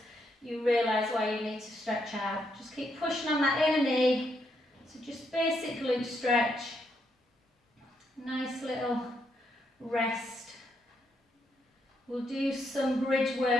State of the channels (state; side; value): normal; both; correlation 0.78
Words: you realise why you need to stretch out. Just keep pushing on that inner knee. So just basic glute stretch. Nice little rest. We'll do some bridge